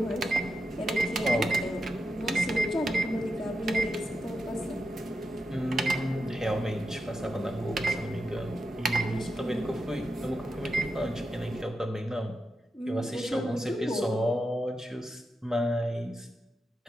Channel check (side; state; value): both; normal; correlation 0.87